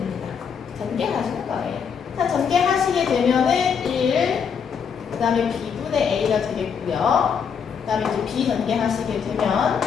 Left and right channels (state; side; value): quieter; right; 6.8 dB